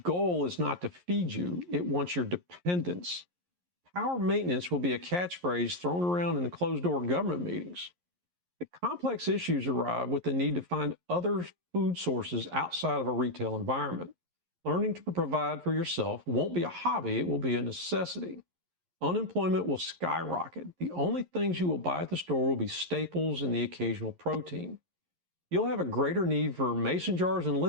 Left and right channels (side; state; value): left; late; 11 ms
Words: is not to feed you, it wants your dependence. Power maintenance will be a catchphrase thrown around in the closed-door government meetings. The complex issues arrive with the need to find other food sources outside of a retail environment. Learning to provide for yourself won't be a hobby, it will be a necessity. Unemployment will skyrocket. The only things you will buy at the store will be staples and the occasional protein. You'll have a greater need for mason jars and